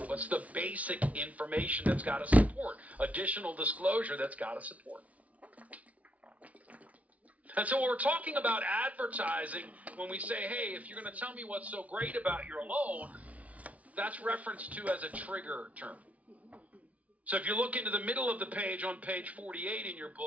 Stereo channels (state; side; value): late; left; 0.068 ms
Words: What's the basic information that's got to support? Additional disclosure that's got to support. And so when we're talking about advertising, when we say, hey, if you're going to tell me what's so great about your loan, that's referenced to as a trigger term. So if you look into the middle of the page on page 48 in your